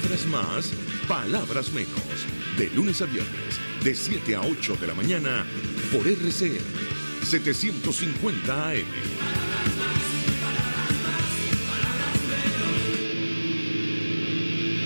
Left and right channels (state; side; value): inverted; both; correlation -1.00